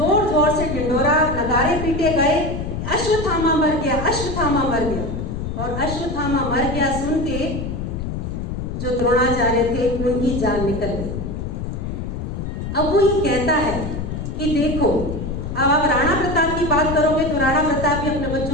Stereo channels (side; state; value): left; noise; rumble, 5 dB below the sound